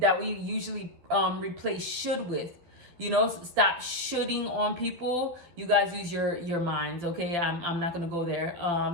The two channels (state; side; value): late; left; 12 ms